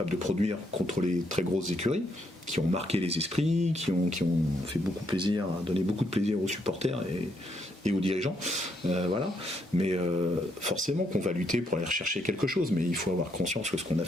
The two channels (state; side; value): normal; both; correlation 0.75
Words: de produire contre les très grosses écuries, qui ont marqué les esprits, qui ont fait beaucoup plaisir, donné beaucoup de plaisir aux supporters et aux dirigeants. Voilà. Mais forcément qu'on va lutter pour aller rechercher quelque chose, mais il faut avoir conscience que ce qu'on a